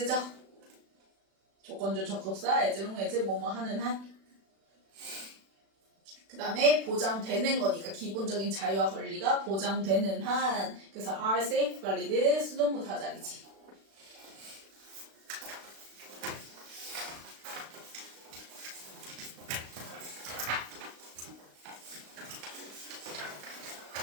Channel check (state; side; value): late; left; 36 ms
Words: 조건절 접속사 as long as 뭐뭐 하는 한. 그 다음에 보장되는 거니까 기본적인 자유와 권리가 보장되는 한. 그래서 are safeguarded 수동부사 자리지.